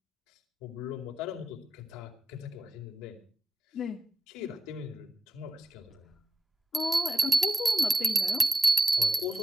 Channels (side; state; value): both; normal; correlation 0.91